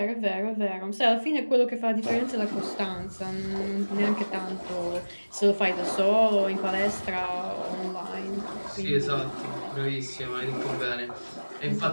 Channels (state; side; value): inverted; both; correlation -1.00